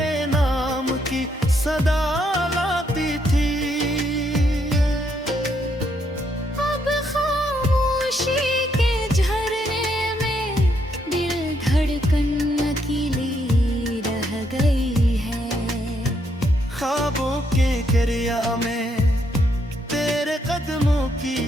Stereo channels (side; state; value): both; normal; correlation 0.75